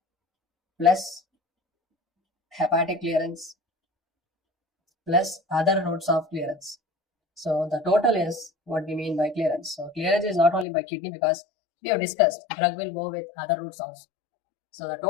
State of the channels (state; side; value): drops out; right; at 10.7 s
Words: plus hepatic clearance plus other routes of clearance. So the total is what we mean by clearance. So clearance is not only by kidney, because we have discussed drug will go with other routes also. So the